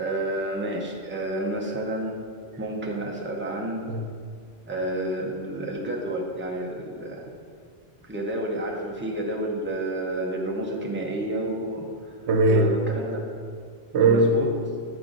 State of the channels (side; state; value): both; normal; correlation -0.06